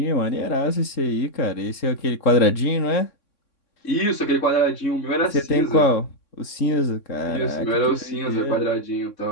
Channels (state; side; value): late; right; 3.6 ms